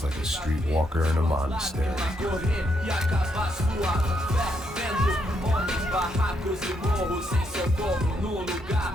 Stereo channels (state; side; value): normal; both; correlation 0.77